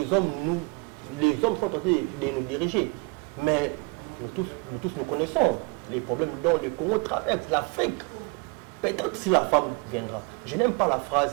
hommes sont tentés de nous diriger. Mais nous tous nous connaissons les problèmes dont le Congo traverse, l'Afrique. Peut-être si la femme viendra. Je n'aime pas la phrase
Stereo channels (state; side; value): quieter; left; 30.8 dB